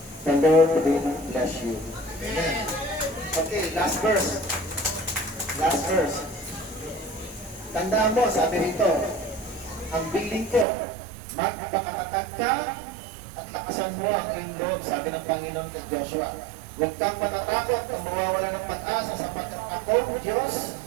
The Lord will bless you. Amen. Okay, last verse. Last verse. Tandaan mo, sabi rito, ang bilin ko, magpakatatag ka at lakasan mo ang iyong loob, sabi ng Panginoon kay Joshua. Huwag kang matatakot na mawawala ng pag-asa sapagkat ako, Diyos,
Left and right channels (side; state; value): left; drops out; at 10.7 s